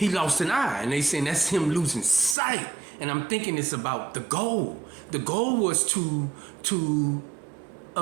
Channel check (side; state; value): left; drops out; at 2.4 s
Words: lost an eye, and they saying that's him losing sight. And I'm thinking it's about the goal. The goal was to